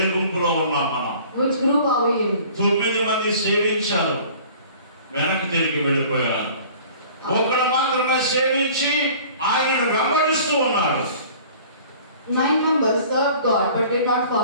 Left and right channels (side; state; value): both; inverted; correlation -0.47